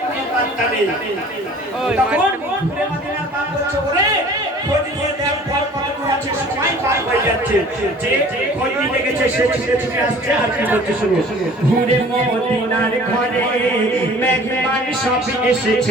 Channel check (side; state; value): both; normal; correlation 0.48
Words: পাত্তা নেই তখন ঘুরে বাদিরা পার করছে ওরে খোঁজ নিয়ে দেখ পর কত আছে সময় পার হয়ে যাচ্ছে যে খোঁজ নিতে গেছে সে ছুটে আসছে আর কি বলছে শুনো ঘুরে মদিনার ঘরে মেহমান সব